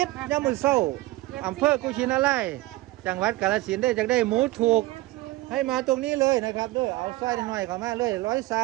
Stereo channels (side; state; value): left; quieter; 19.2 dB